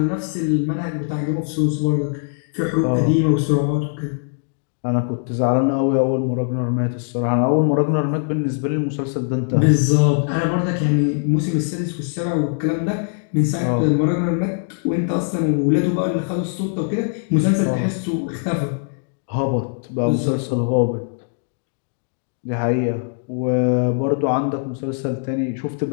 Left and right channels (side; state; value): right; silent; digital silence